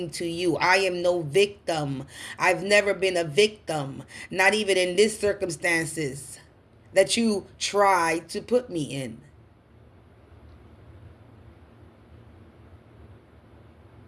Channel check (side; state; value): both; identical; correlation 1.00